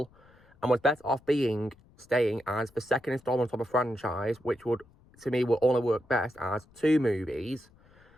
and was better off staying as the second installment of a franchise, which would only work best as two movies.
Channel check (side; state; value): left; noise; rumble, 28 dB below the sound